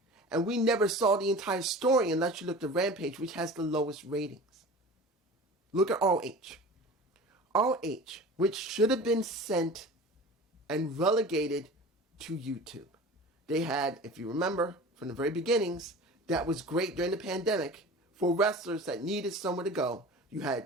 And we never saw the entire story unless you looked at Rampage, which has the lowest ratings. Look at ROH. ROH, which should have been sent and relegated to YouTube. They had, if you remember, from the very beginnings, that was great during the pandemic for wrestlers that needed somewhere to go. You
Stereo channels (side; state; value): both; normal; correlation 0.38